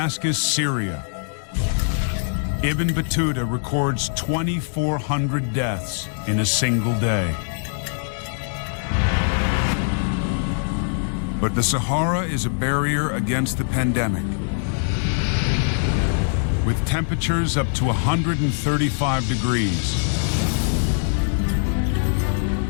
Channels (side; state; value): right; silent; digital silence